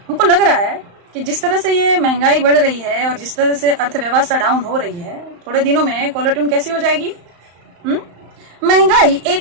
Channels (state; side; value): late; left; 35 ms